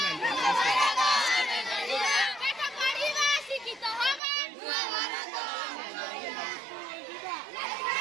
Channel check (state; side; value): drops out; left; at 4.2 s